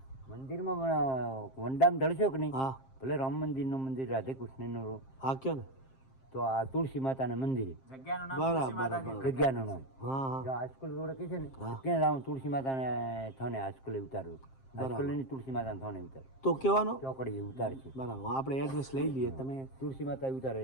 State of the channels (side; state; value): right; late; 7.6 ms